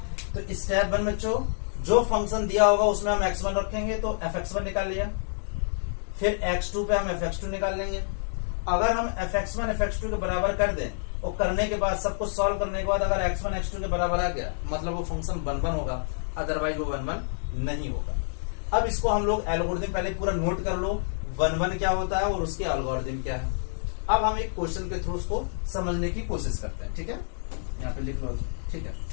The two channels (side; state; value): right; silent; digital silence